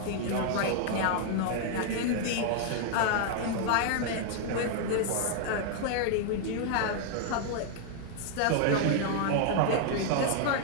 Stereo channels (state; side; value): different; both; correlation 0.00